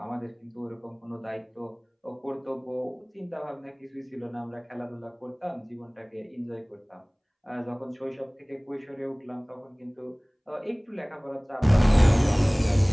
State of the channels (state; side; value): identical; both; correlation 1.00